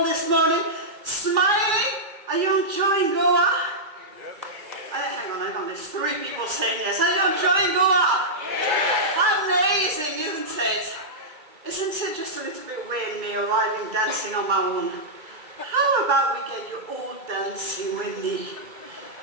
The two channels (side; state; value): left; late; 2.3 ms